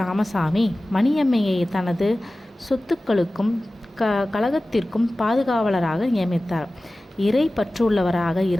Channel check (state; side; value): normal; both; correlation 0.97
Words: ராமசாமி மணியம்மையை தனது சொத்துக்களுக்கும் கழகத்திற்கும் பாதுகாவலராக நியமித்தார். இறை பற்றுள்ளவராக